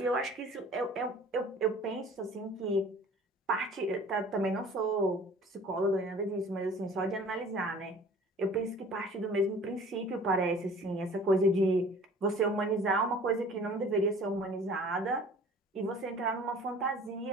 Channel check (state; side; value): normal; both; correlation 0.47